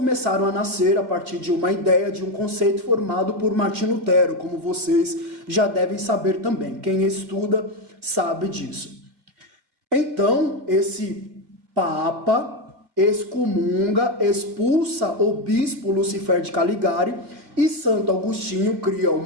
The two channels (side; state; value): left; late; 2.3 ms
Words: a nascer a partir de uma ideia, de um conceito formado por Martim Lutero, como vocês já devem saber também. Quem estuda sabe disso. Então, esse Papa excomunga, expulsa o bispo Lucifer de Caligari e Santo Agostinho cria